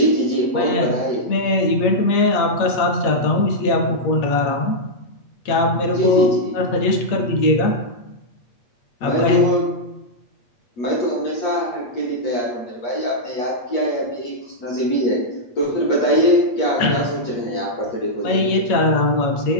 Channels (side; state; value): right; late; 8.4 ms